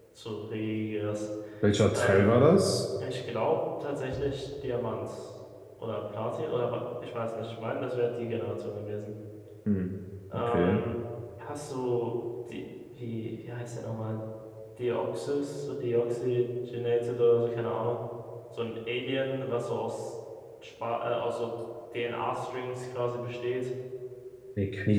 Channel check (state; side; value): identical; both; correlation 1.00